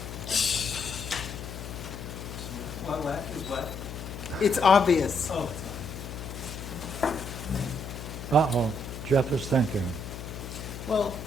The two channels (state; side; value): noise; left; hum, 10 dB below the sound